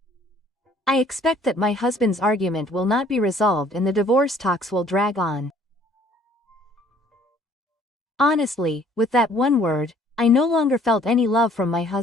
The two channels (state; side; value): normal; both; correlation 0.58